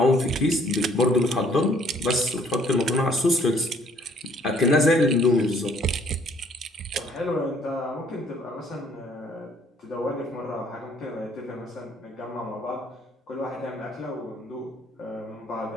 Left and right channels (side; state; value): both; normal; correlation 0.61